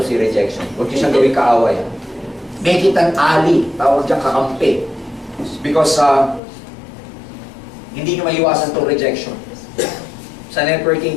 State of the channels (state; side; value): drops out; right; at 6.4 s